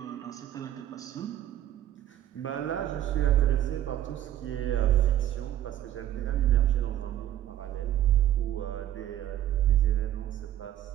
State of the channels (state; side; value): quieter; left; 12.2 dB